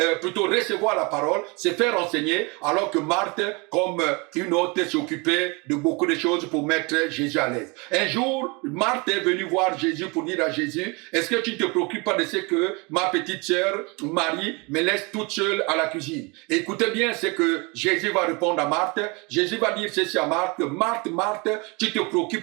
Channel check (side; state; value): left; quieter; 28.7 dB